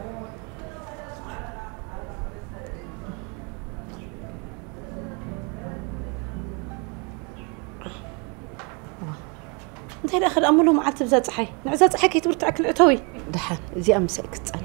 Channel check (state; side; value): quieter; left; 32.8 dB